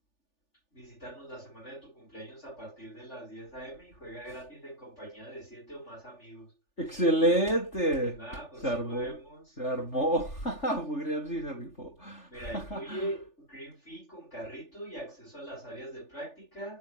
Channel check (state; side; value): late; right; 3.4 ms